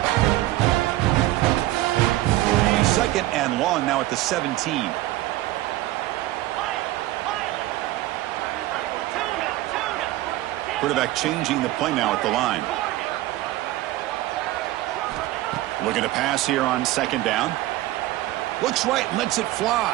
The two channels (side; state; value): left; quieter; 16.4 dB